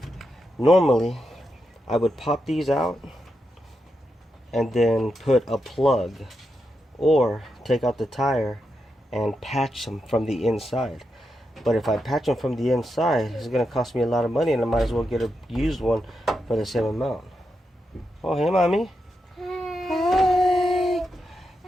normally I would pop these out and then put a plug or take out the tire and patch them from the inside. But if I patch them from the inside, it's going to cost me a lot of money, and I might as well get a used one for the same amount. Oh, hey, mommy. Hi.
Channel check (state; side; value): normal; both; correlation 0.85